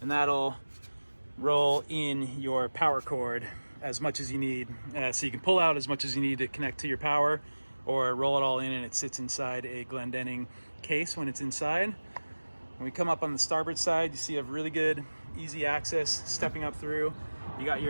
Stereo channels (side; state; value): both; inverted; correlation -1.00